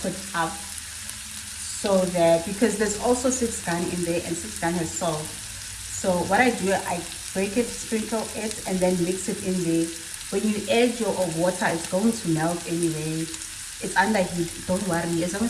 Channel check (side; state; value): both; identical; correlation 1.00